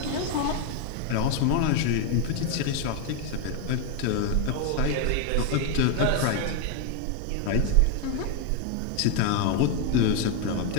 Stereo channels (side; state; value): both; different; correlation 0.01